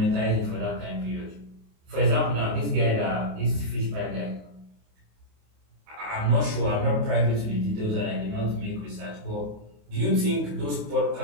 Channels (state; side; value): late; left; 28 ms